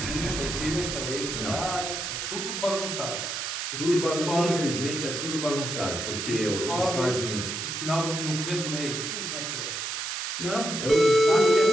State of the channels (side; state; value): right; noise; hiss, 4 dB below the sound